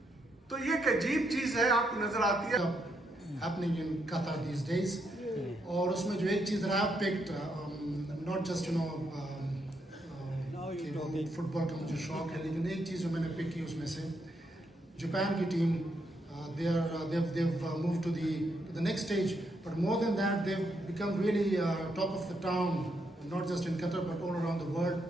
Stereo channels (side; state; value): both; normal; correlation 0.78